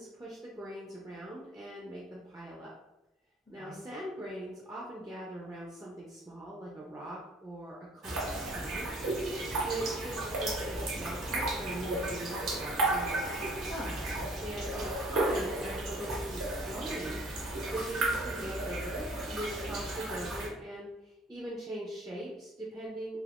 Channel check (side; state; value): both; normal; correlation 0.54